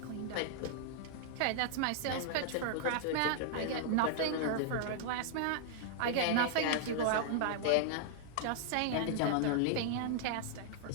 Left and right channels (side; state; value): both; different; correlation -0.01